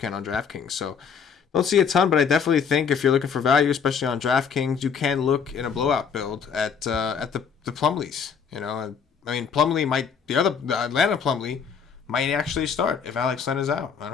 on DraftKings. So don't see a ton, but I definitely think if you're looking for value, especially on DraftKings, you can look in a blowout build at the Plumlees. I mean, the Atlanta Plumlee might actually start if Alex Len is out.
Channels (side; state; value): right; quieter; 6.6 dB